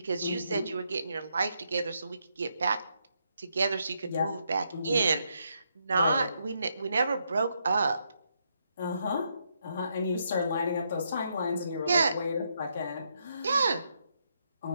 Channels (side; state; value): both; inverted; correlation -0.78